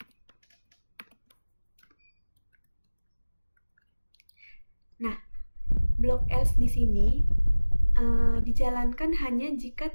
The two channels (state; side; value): inverted; both; correlation -1.00